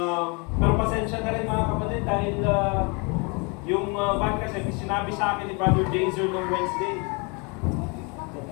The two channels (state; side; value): quieter; right; 31.7 dB